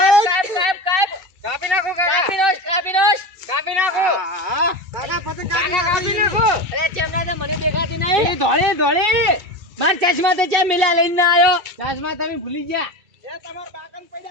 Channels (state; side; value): late; left; 2.3 ms